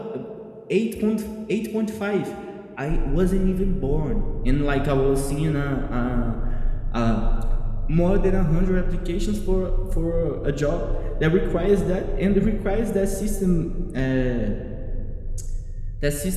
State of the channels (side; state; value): both; identical; correlation 1.00